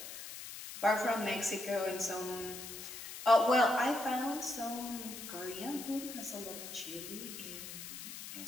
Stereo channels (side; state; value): left; noise; hiss, 10 dB below the sound